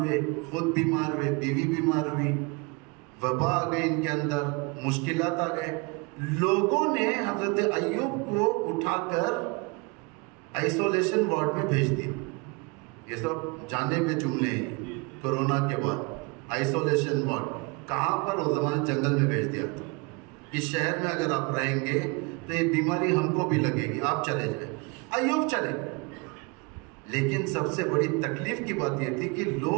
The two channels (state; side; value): quieter; left; 28.7 dB